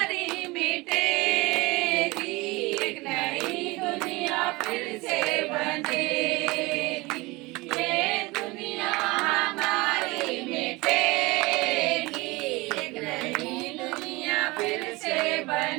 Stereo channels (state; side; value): quieter; left; 23.1 dB